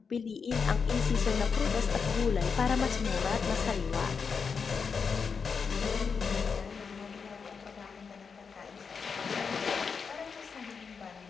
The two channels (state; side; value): quieter; right; 5.7 dB